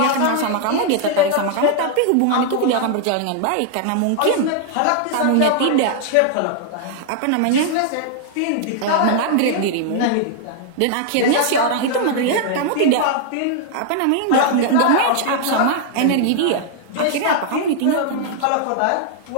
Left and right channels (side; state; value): both; different; correlation 0.00